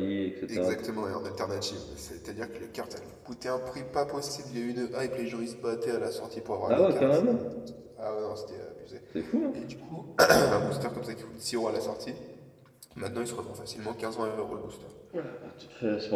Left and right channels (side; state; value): both; identical; correlation 1.00